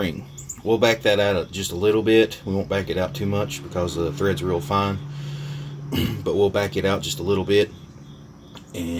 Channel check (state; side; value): identical; both; correlation 1.00